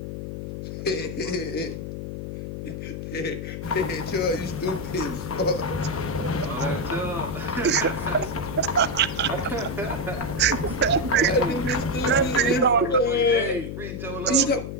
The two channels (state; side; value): noise; left; hum, 7 dB below the sound